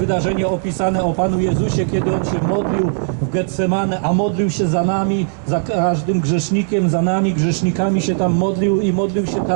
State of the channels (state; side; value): silent; left; digital silence